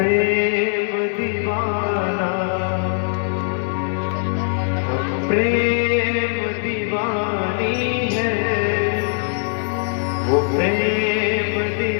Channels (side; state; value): right; silent; digital silence